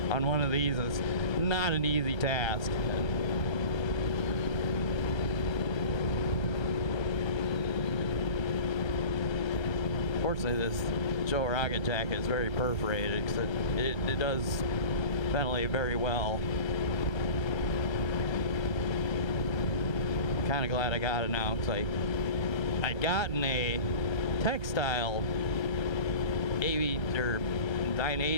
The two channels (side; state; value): right; late; 1.3 ms